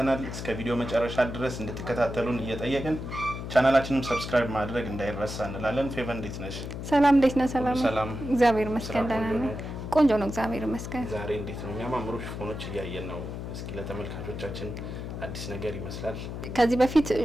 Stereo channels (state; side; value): noise; left; hum, 7 dB below the sound